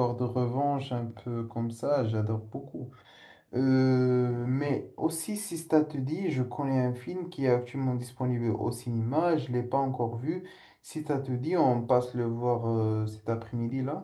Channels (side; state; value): both; identical; correlation 1.00